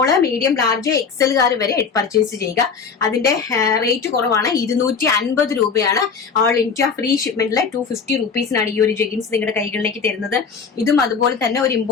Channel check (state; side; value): quieter; right; 5.6 dB